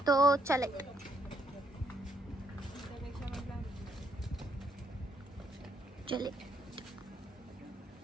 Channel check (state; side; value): normal; both; correlation 0.72